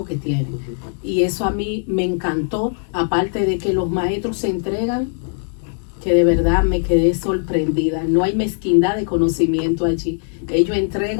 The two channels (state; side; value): silent; right; digital silence